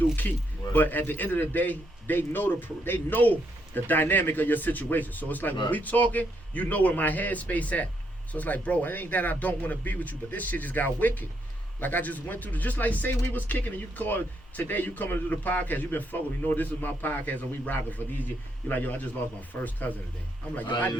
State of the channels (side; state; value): both; normal; correlation 0.76